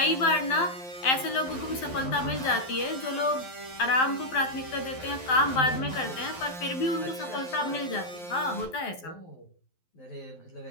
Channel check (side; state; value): right; late; 12 ms